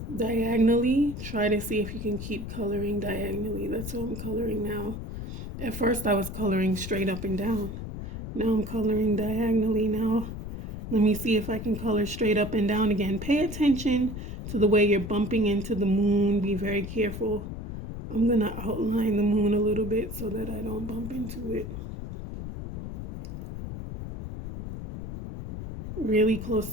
diagonally, try to see if you can keep coloring diagonally. That's what I'm coloring now. At first I was coloring straight up and down, Now I'm coloring diagonally. Now let me see if I can color straight up and down again. Pay attention to the way you're bumping into the moon. Be very careful. I'm going to outline the moon a little bit so that I don't bump into it. Really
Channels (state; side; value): noise; left; rumble, 7 dB below the sound